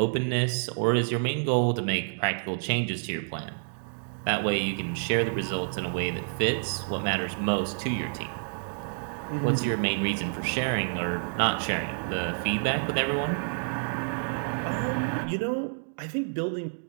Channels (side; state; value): left; silent; digital silence